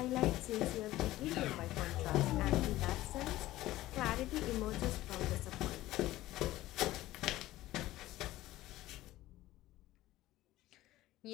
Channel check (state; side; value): quieter; right; 16.1 dB